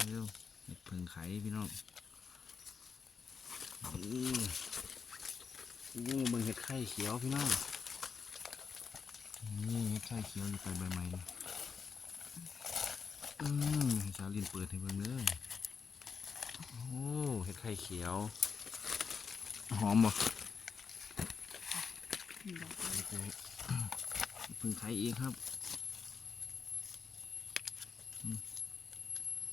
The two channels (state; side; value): quieter; right; 5.8 dB